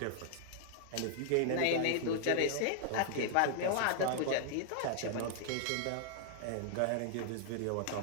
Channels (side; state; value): both; different; correlation -0.01